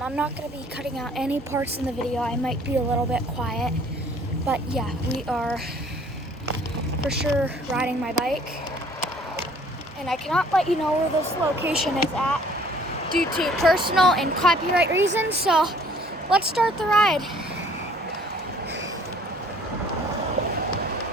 not going to be cutting out any parts in the video. I might be a little bit quiet. But yeah, we are for sure riding my bike. And I cannot let you know where this location is at due to personal and copyright reasons. So, let's start the ride.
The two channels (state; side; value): normal; both; correlation 0.56